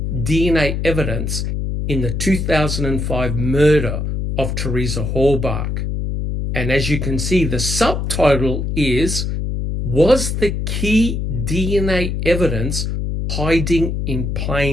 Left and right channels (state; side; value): noise; left; hum, 2 dB below the sound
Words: DNA evidence in the 2005 murder of Theresa Horbach? And as you can see, the subtitle is, Was the key DNA evidence hiding in